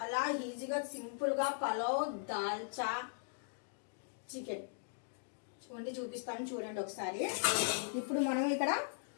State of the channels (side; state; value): right; silent; digital silence